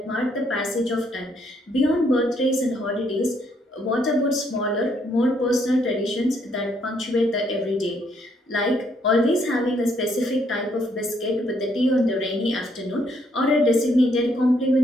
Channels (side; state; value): both; normal; correlation 0.71